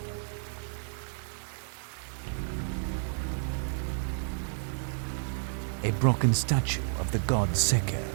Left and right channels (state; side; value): silent; left; digital silence